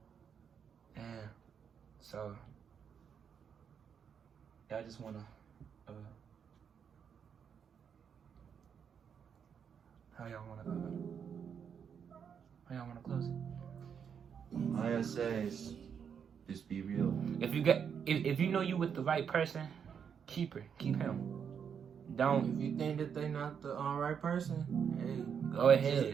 Yeah. So I just wanna how y'all wanna close it? All I gotta say is just be real. If you know you with the right person, keep him. Don't. If you think that they not the right person, hey, go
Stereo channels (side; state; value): left; quieter; 7.4 dB